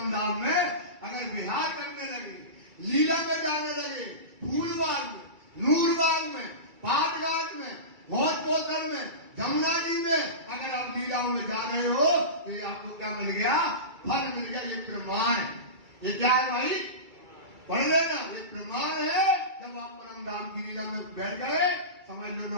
धाम में अगर विहार करने लगे, लीला में जाने लगे, फूलबाग में, नूरबाग में, पाटघाट में, भोज पोखर में, जमुना जी में अगर आप लीलाओं में जा रहे हो तो ये आपको क्या मिल गया? फल मिल गया। ये प्रमाण। ये क्या है भाई? पढ़ लेना। ये प्रमाण है। जब आप परम धाम की लीला में बैठ गए, समझ लो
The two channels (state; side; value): late; left; 2.3 ms